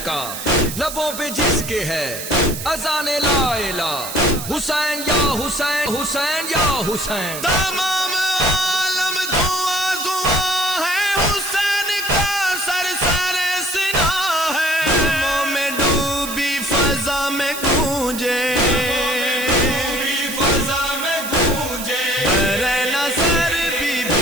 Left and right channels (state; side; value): noise; right; hiss, 8 dB below the sound